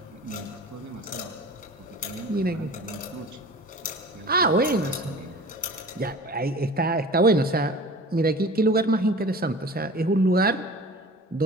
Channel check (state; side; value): normal; both; correlation 0.40